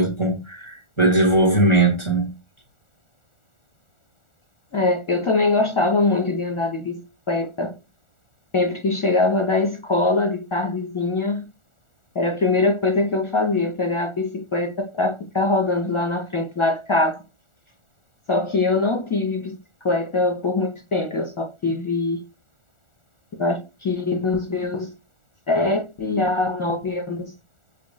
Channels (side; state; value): right; late; 1.4 ms